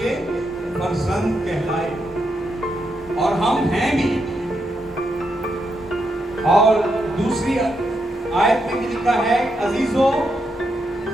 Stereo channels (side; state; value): both; normal; correlation 0.82